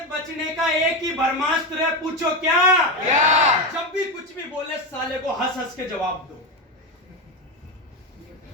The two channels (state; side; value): normal; both; correlation 0.14